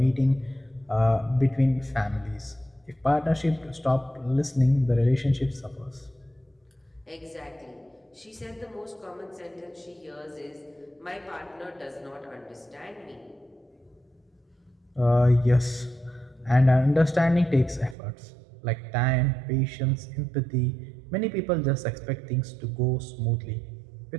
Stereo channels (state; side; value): drops out; left; at 17.9 s